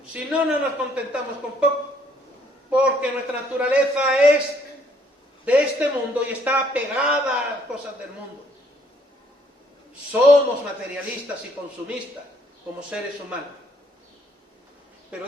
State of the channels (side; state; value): both; normal; correlation 0.66